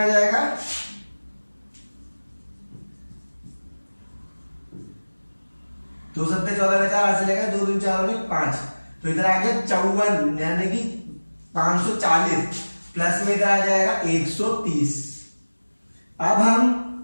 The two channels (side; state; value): both; inverted; correlation -1.00